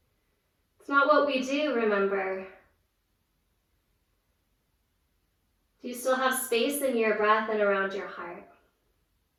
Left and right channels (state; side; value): identical; both; correlation 1.00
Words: It's not what we do, remember. Do you still have space in your breath and around your heart?